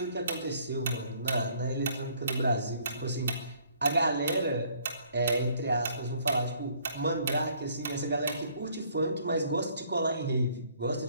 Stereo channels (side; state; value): both; inverted; correlation -0.62